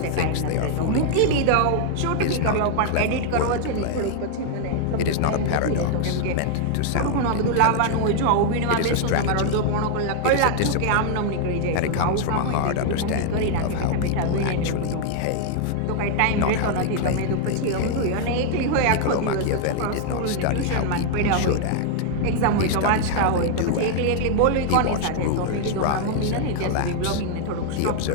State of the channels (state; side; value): different; both; correlation 0.00